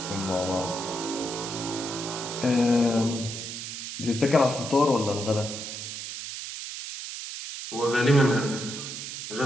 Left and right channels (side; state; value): right; noise; hiss, 7 dB below the sound